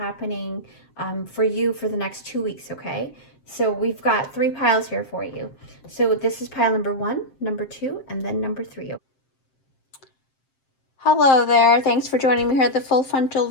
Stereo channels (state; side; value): late; right; 7.6 ms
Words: for you for the next 2 weeks. Okay. So we've got 3 piles here for you. So this is pile number 1, number 2, and then number 3. Hello there. Thanks for joining me here at the full frontal